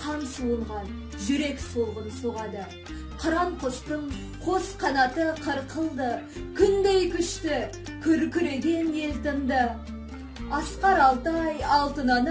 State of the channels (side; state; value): both; identical; correlation 1.00